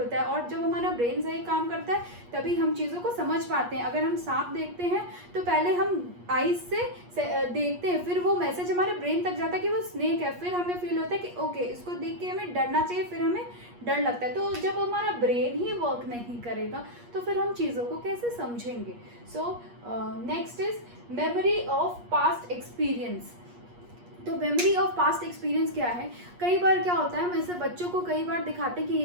है, और जब हमारा ब्रेन सही काम करता है तभी हम चीज़ों को समझ पाते हैं। अगर हम सांप देखते हैं तो पहले हम आईज से देखते हैं, फिर वो मैसेज हमारे ब्रेन तक जाता है कि वो स्नेक है, फिर हमें फील होता है कि ओके इसको देख के हमें डरना चाहिए, फिर हमें डर लगता है। तो जब हमारा ब्रेन ही वर्क नहीं करेगा तो फिर हम चीज़ों को कैसे समझेंगे। So next is memory of past experience. तो मेमोरी ऑफ पास्ट एक्सपीरियंस क्या है, कई बार क्या होता है, हम ऐसे बच्चों को कई बार दिखाते हैं कि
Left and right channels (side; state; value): left; late; 8.4 ms